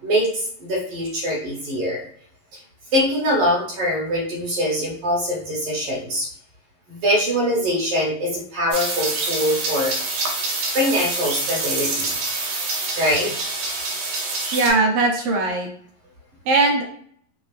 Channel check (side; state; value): left; late; 11 ms